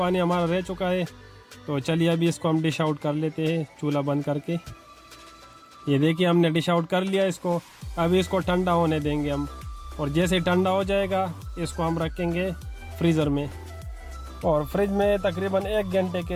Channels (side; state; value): both; identical; correlation 1.00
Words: हमारा रह चुका है। तो चलिए अभी इसको हम डिश आउट कर लेते हैं चूल्हा बंद करके। ये देखिए हमने डिश आउट कर लिया इसको। अभी इसको ठंडा होने देंगे हम, और जैसे ठंडा हो जाएगा इसको हम रखेंगे फ्रीज़र में, और फ्रिज में तकरीबन 1 घंटे